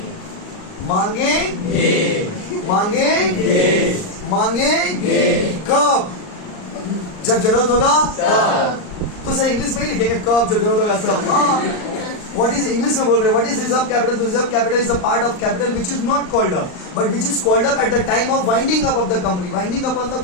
मांगे मांगे मांगे कब? जब जरूरत होगा तब। तो सर इंग्लिश में ही लिखेंगे कब, जब जरूरत होगा तब। हाँ, What is इंग्लिश में बोल रहे हैं? What is reserve capital? Reserve capital is a part of capital which is not called up, but which is called up at the time of winding up of the company. Winding up मतलब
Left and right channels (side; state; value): right; late; 39 ms